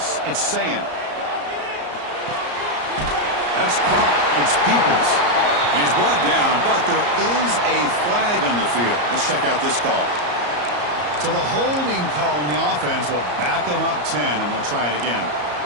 It's Sayin. That's caught. It's Peoples. He's brought down, but there is a flag on the field. Let's check out this call. So the holding call on the offense will back them up 10, and they'll try it again.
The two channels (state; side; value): late; left; 34 ms